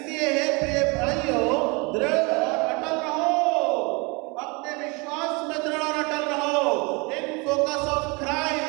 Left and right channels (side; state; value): left; quieter; 28.7 dB